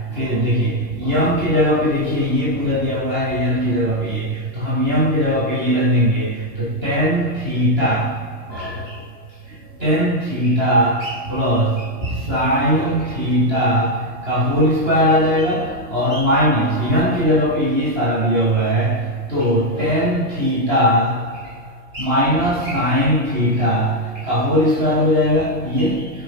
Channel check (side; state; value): left; late; 2.9 ms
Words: फिर देखिए यम की जगह पे देखिए ये पूरा दिया हुआ है, यम की जगह पे ये, तो हम यम की जगह पे ये रख देंगे, तो tan theta plus sine theta का होल स्क्वायर आ जाएगा, और माइनस यम की जगह पे ये सारा दिया हुआ है, तो tan theta minus sine theta का होल स्क्वायर हो जाएगा। ये